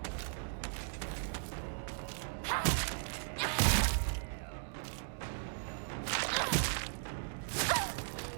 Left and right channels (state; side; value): silent; left; digital silence